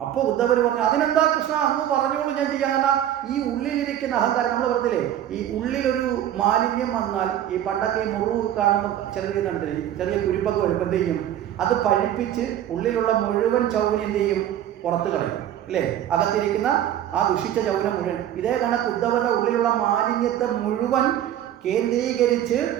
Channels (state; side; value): quieter; left; 11.4 dB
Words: അപ്പോൾ ഉദ്ധവർ പറഞ്ഞു, അതിനെന്താ കൃഷ്ണ, അങ്ങ് പറഞ്ഞോളൂ, ഞാൻ ചെയ്യാൻ. ഈ ഉള്ളിലിരിക്കുന്ന അഹങ്കാരം, നമ്മൾ പറഞ്ഞില്ലേ, ഈ ഉള്ളിലൊരു മാലിന്യം വന്നാൽ, ഈ പണ്ടൊക്കെ ഈ മുറിവ് കാണുമ്പോൾ ചെറിയ കുരുപ്പൊക്കെ വരുമ്പോൾ എന്ത് ചെയ്യും? അത് പഴിപ്പിച്ച് ഉള്ളിലുള്ള മുഴുവൻ ചൗവ്വനെ എന്ത് ചെയ്യും? പുറത്ത് കളയും, അല്ലേ? അകത്തിരിക്കുന്ന ആ ദുഷിച്ച ചൗവ്വനെ മുഴുവൻ. ഇതേ കണക്ക് ഉദ്ധവരുടെ ഉള്ളിലുള്ള മാലിന്യത്തെ മുഴുവൻ കേന്ദ്രീകരിച്ച്